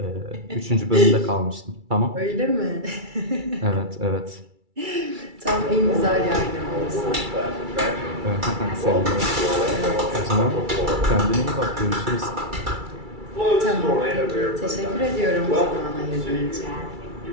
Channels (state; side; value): late; left; 2.3 ms